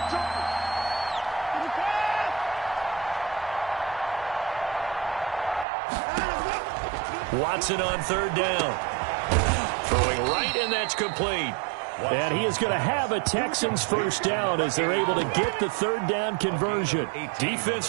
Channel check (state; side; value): drops out; left; at 5.7 s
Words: Watson on 3rd down. Throwing right, and that's complete. And he is going to have a Texans first down as they're able to get the 3rd down conversion.